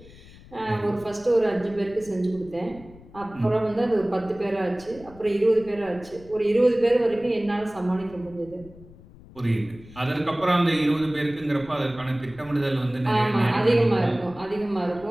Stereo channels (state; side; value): noise; left; rumble, 21 dB below the sound